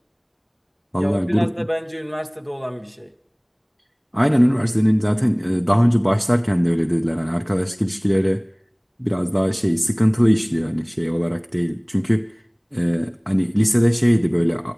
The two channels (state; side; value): identical; both; correlation 1.00